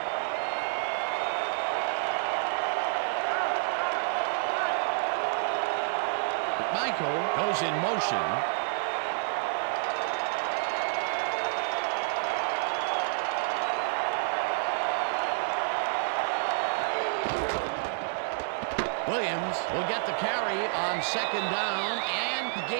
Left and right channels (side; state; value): left; silent; digital silence